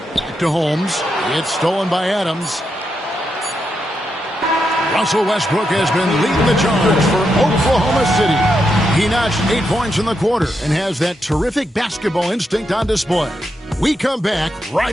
Back to Holmes. It's stolen by Adams. Russell Westbrook has been leading the charge for Oklahoma City. He notched 8 points in the quarter and has that terrific basketball instinct on display. We come back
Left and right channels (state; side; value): normal; both; correlation 0.83